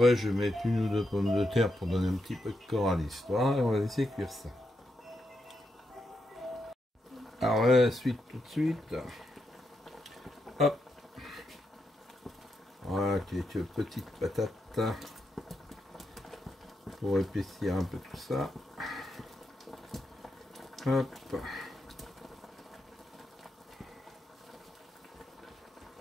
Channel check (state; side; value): normal; both; correlation 0.83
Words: je vais mettre une ou deux pommes de terre pour donner un petit peu de corps à l'histoire et on va laisser cuire ça. Alors la suite tout de suite. Hop. Voilà, quelques petites patates pour épaissir un peu tout ça. Hop.